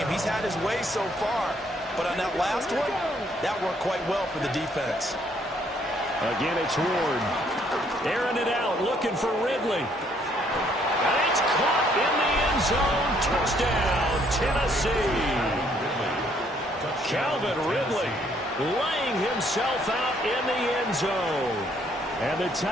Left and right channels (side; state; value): both; normal; correlation 0.67